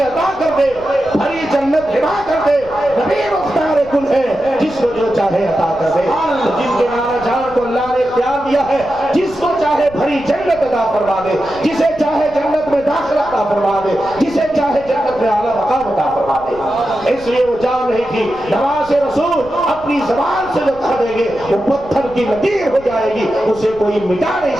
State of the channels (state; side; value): noise; left; rumble, 19 dB below the sound